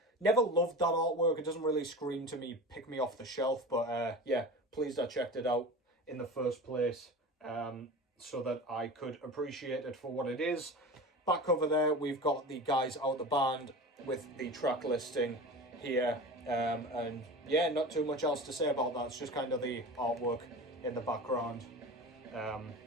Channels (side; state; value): both; normal; correlation 0.33